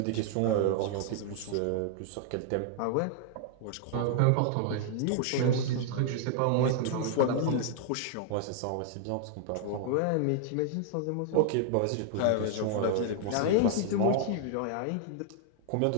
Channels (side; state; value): both; different; correlation 0.00